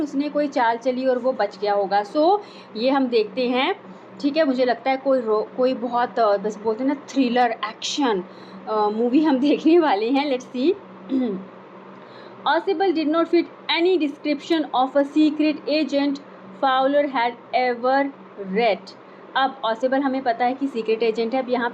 कोई चाल चली और वो बच गया होगा. सो ये हम देखते हैं, ठीक है. मुझे लगता है कोई बहुत बस बोलते हैं ना थ्रिलर एक्शन मूवी हम देखने वाले हैं. Let's see. Possible did not fit any description of a secret agent Fowler had ever read. अब Possible हमें पता है कि सीक्रेट एजेंट है. अब यहाँ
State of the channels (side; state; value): both; identical; correlation 1.00